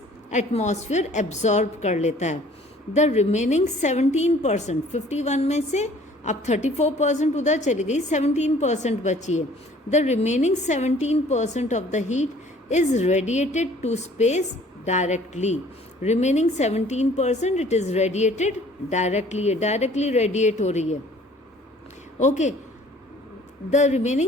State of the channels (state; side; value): normal; both; correlation 0.54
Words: एटमॉस्फेयर एब्जॉर्ब कर लेता है. द रिमेनिंग 17%, 51 में से अब 34% उधर चली गई, 17% बची है. The remaining 17% of the heat is radiated to space directly. Remaining 17% it is radiated directly, directly radiate हो रही है. Okay, the